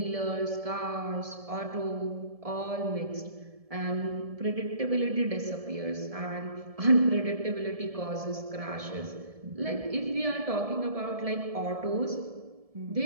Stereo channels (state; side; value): late; left; 1.7 ms